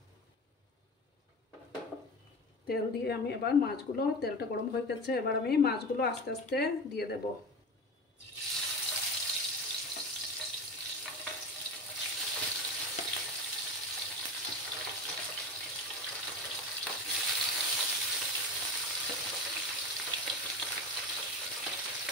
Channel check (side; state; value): both; normal; correlation 0.27